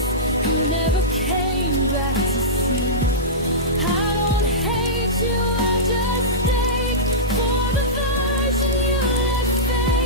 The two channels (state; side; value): normal; both; correlation -0.16